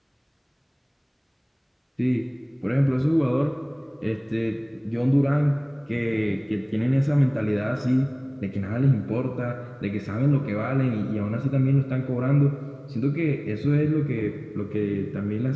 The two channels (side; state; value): both; identical; correlation 1.00